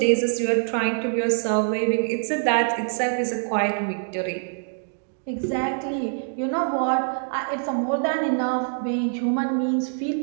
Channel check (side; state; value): left; silent; 62 dB below the other